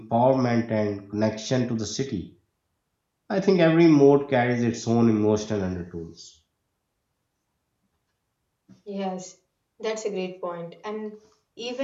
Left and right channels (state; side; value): identical; both; correlation 1.00